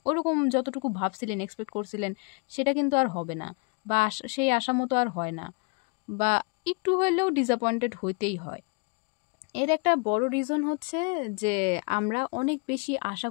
ওরকম যতটুকু ভাবছিলেন, এক্সপেক্ট করছিলেন সেটা কিন্তু আর হবে না বা সেই আশা মতো আর হয় না বা একটু হইলেও ডিসঅ্যাপয়েন্টেড হইতেই হয়। এর একটা বড় রিজন হচ্ছে যে আমরা অনেক বেশি আশা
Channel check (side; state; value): right; quieter; 32.7 dB